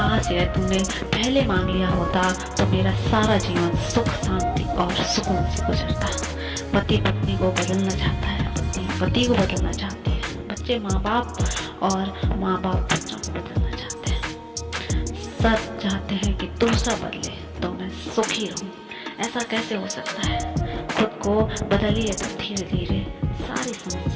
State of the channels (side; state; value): both; identical; correlation 1.00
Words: यह तूने पहले मांग लिया होता तो मेरा सारा जीवन सुख शांति और सुकून से गुजरता। पति पत्नी को बदलना चाहता है, पति को बदलना चाहती है, बच्चे माँ बाप और माँ बाप बच्चों को बदलना चाहते हैं। सब चाहते हैं कि दूसरा बदले तो मैं सुखी रहूं। ऐसा कैसे हो सकता है? खुद को बदलिए तो धीरे धीरे सारी